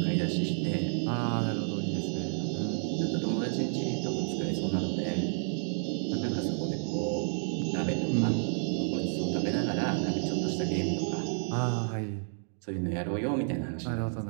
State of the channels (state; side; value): silent; left; digital silence